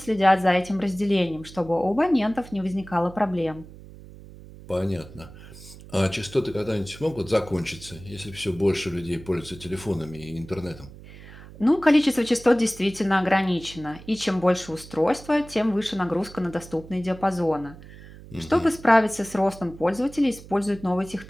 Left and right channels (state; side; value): noise; right; hum, 18 dB below the sound